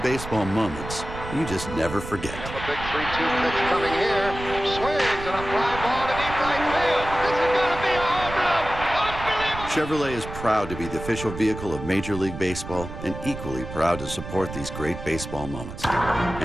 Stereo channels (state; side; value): noise; right; rumble, 10 dB below the sound